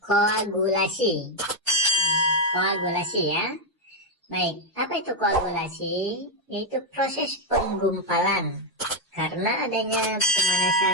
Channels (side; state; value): both; normal; correlation 0.04